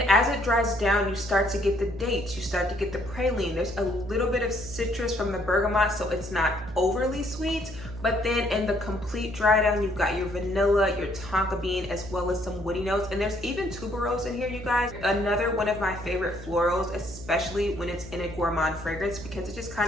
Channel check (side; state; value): right; noise; hum, 13 dB below the sound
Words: as it dries down, you start to get the dates, you start to get the praline. There's a little bit of citrus from the bergamot, so it's not overly sweet. But then in the complete dry down, you've got your vanilla, your tonka bean, as well as some woody notes. And there's even tuberose in here, you guys. Another one of my favorite florals, especially when it's in a gourmand fragrance, because it just